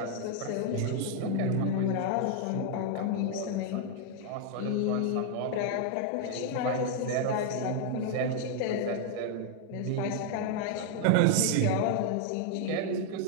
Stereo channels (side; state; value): both; different; correlation 0.00